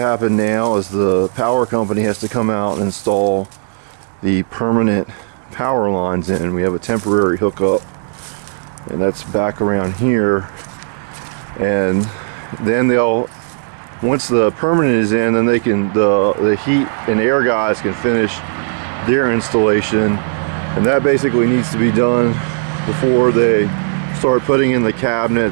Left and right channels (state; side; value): silent; left; digital silence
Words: happen now is the power company has to come out and install the permanent power lines in. We have a temporary hookup, and that's back around here. And then once the permanent is in, then they can, the heat and air guys can finish their installation, and that basically needs to be done before they start putting in the